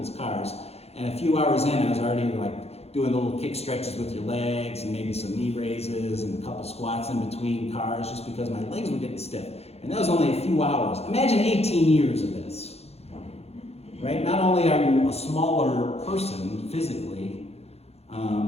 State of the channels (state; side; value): late; right; 0.30 ms